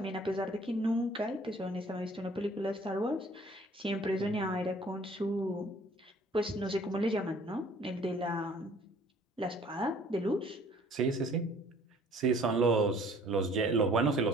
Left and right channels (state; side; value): normal; both; correlation 0.55